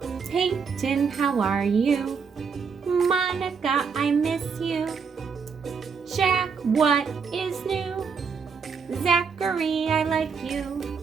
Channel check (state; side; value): quieter; left; 5.8 dB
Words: Peyton, how are you? Monica, I miss you. Jack, what is new? Zachary, I like you.